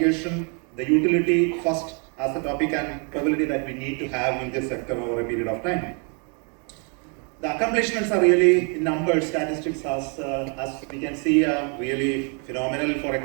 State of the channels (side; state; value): left; quieter; 37.4 dB